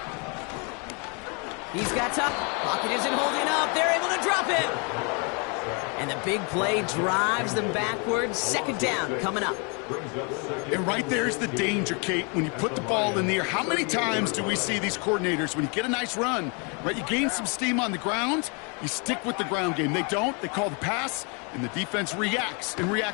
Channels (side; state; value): right; quieter; 34.2 dB